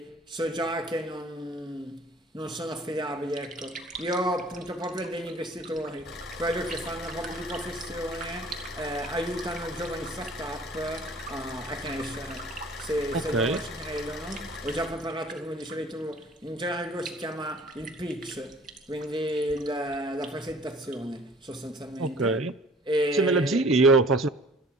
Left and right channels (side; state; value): both; normal; correlation 0.51